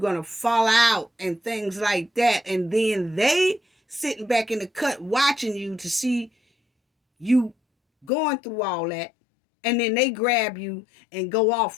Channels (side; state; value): right; drops out; at 8.1 s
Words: to fall out and things like that. And then they sitting back in the cut watching you to see you going through all that, and then they grab you and go